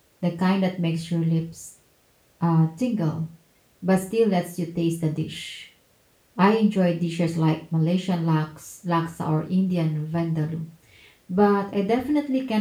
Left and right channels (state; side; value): identical; both; correlation 1.00